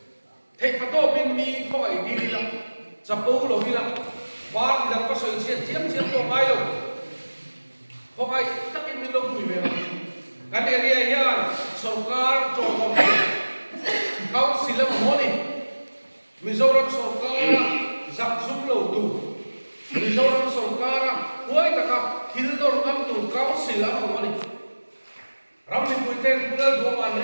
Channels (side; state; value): both; inverted; correlation -1.00